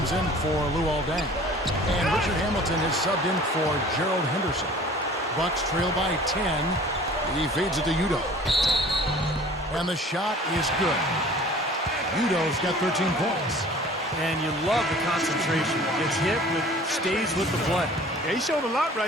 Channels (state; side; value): normal; both; correlation 0.47